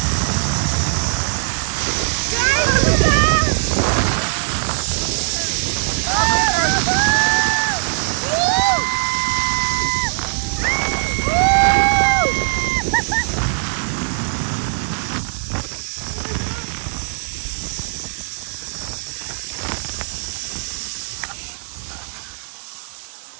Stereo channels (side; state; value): left; silent; 64 dB below the other